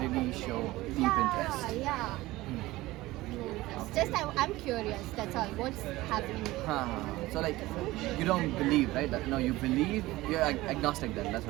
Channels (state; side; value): quieter; left; 18.4 dB